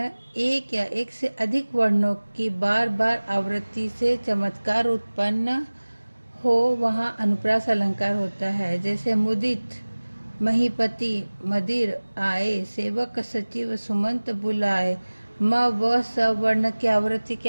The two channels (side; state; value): both; inverted; correlation -1.00